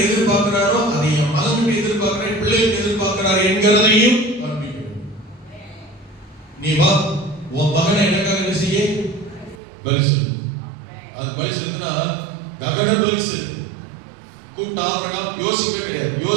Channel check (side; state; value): left; drops out; at 9.6 s